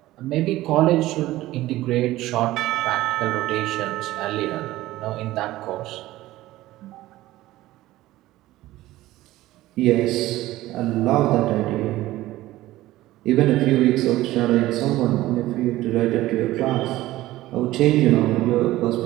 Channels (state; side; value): quieter; left; 16.4 dB